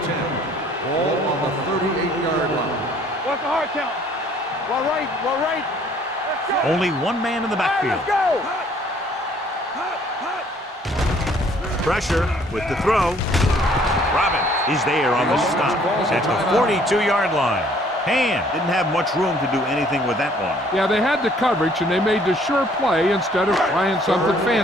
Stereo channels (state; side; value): normal; both; correlation 0.60